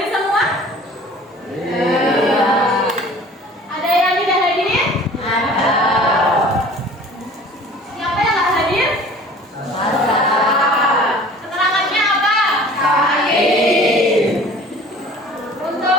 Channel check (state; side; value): normal; both; correlation 0.47